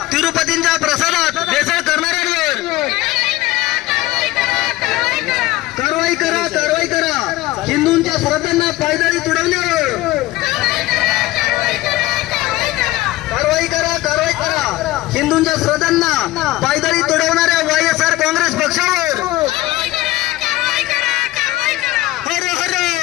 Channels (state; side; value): quieter; right; 17.6 dB